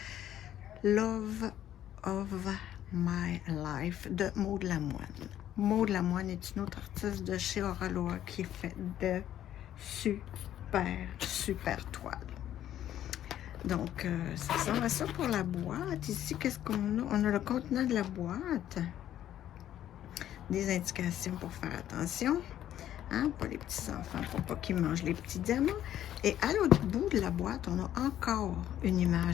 Love of My Life de Maud Lamoine. Maud Lamoine est une autre artiste de chez Auraloa qui fait de super toiles. Donc, ça ressemble à ça pour la boîte. Ici, qu'est-ce qu'on a? On a le contenant de la boîte. Des indications pour faire attention. Hein, pour les petits-enfants, pour pas qu'ils mangent les petits diamants. Et à l'autre bout de la boîte, on a encore une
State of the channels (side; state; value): right; quieter; 11.6 dB